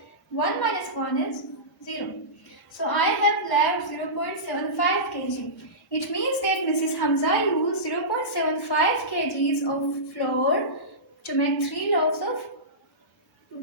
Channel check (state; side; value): normal; both; correlation -0.19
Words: 1 minus 1 is 0. So I have left 0.75 kg. It means that Mrs. Hamza used 0.75 kgs of flour to make 3 loaves of